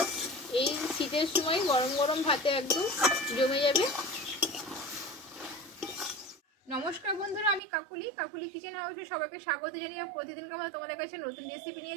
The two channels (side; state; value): left; drops out; at 7.6 s